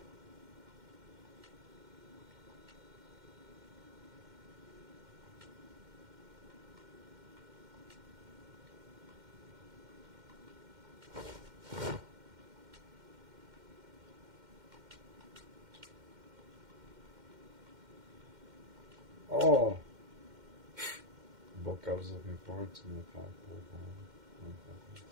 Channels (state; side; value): late; left; 2.1 ms